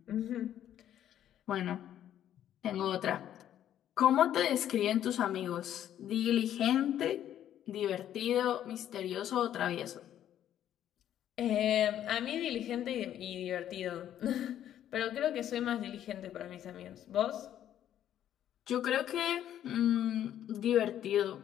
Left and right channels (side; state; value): right; quieter; 11.0 dB